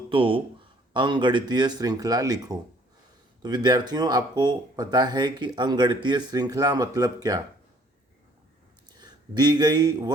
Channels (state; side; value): normal; both; correlation 0.59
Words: तो अंकगणितीय श्रृंखला लिखो। तो विद्यार्थियों, आपको पता है कि अंकगणितीय श्रृंखला मतलब क्या। दी गई